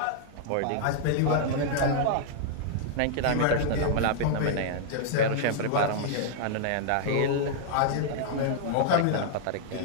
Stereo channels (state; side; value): different; both; correlation -0.01